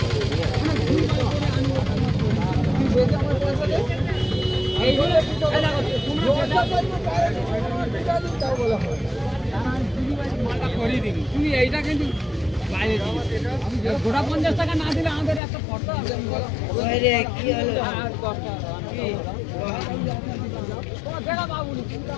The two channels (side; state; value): right; drops out; at 15.4 s